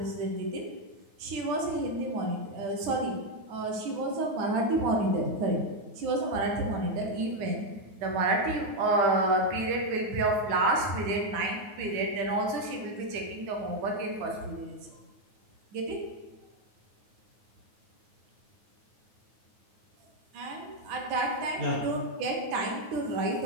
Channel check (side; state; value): left; late; 9.5 ms